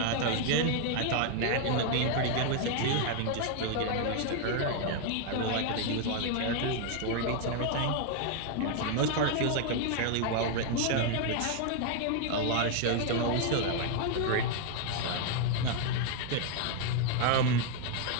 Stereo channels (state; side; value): different; both; correlation 0.00